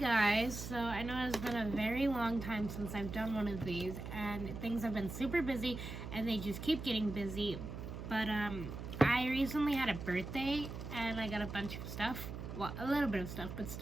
so I know it's been a very long time since I've done one of these and things have been super busy and they just keep getting busy. But I recently had a birthday and I got a bunch of stuff. Well, a little bit of stuff, but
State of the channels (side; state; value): right; noise; hum, 8 dB below the sound